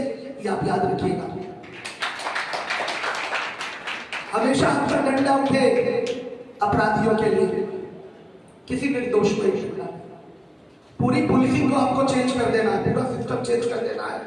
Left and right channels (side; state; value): both; identical; correlation 1.00